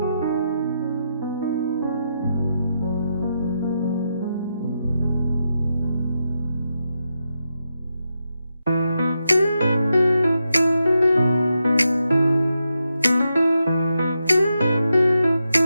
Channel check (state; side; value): inverted; both; correlation -0.85